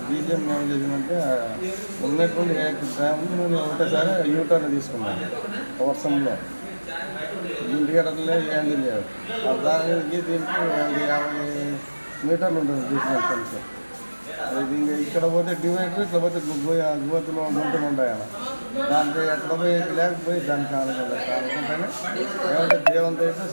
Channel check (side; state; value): both; inverted; correlation -1.00